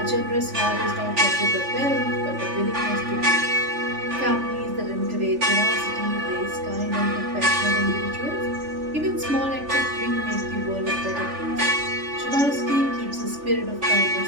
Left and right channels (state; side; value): late; left; 3.4 ms